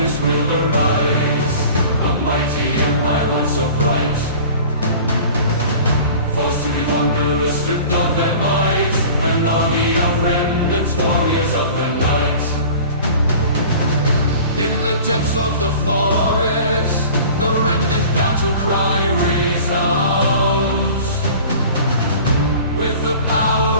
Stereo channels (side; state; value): both; inverted; correlation -0.42